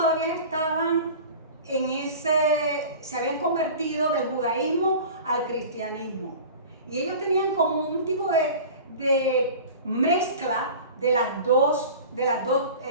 estaban se habían convertido del judaísmo al cristianismo. Y ellos tenían como un tipo de mezcla de las dos,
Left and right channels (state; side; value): inverted; both; correlation -0.38